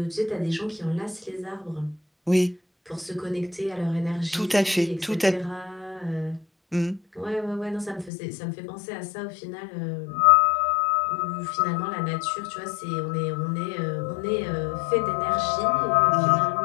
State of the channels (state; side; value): drops out; right; at 8.1 s